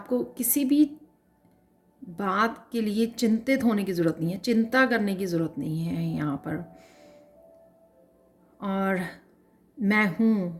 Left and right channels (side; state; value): both; identical; correlation 1.00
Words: किसी भी बात के लिए चिंतित होने की ज़रूरत नहीं है, चिंता करने की ज़रूरत नहीं है यहाँ पर। और